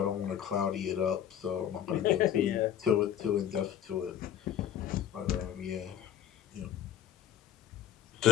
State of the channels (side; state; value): right; quieter; 10.1 dB